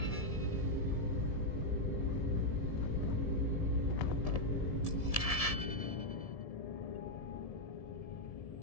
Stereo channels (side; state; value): right; late; 1.7 ms